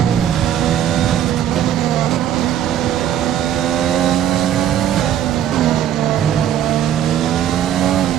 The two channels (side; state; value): left; quieter; 10.5 dB